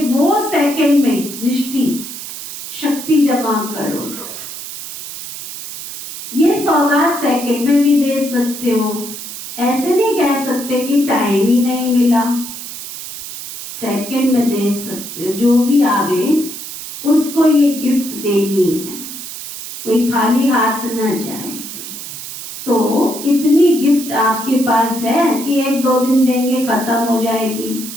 वो सेकंड में दृष्टि शक्ति जमा करो, ये सौगात सेकंड में भी दे सकते हो, ऐसे नहीं कह सकते कि टाइम ही नहीं मिला, सेकंड में दे सकते हो। जो भी आवे उसको ये गिफ्ट देनी है, कोई खाली हाथ न जाए। तो इतनी गिफ्ट आपके पास है कि एक दो दिन देंगे खत्म हो जाएगी,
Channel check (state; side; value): noise; right; hiss, 10 dB below the sound